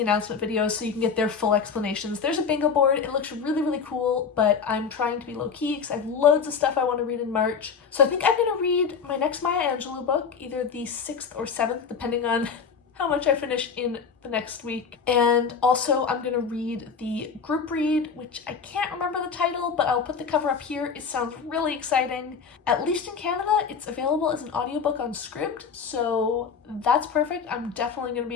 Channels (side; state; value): right; quieter; 6.0 dB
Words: announcement videos so you can get their full explanations. There's a bingo board, it looks really cool, but I'm trying to be low-key because I have loads of stuff I want to read in March. So I think I'm going to read my next Maya Angelou book, either the 6th or 7th, depending on how much I finish in the next week. And also I'm gonna read the group read, which I can't remember the title, but I'll put the cover up here. It sounds really exciting. At least in Canada, it's available as an audiobook on Scribd, so that's perfect. I'm definitely gonna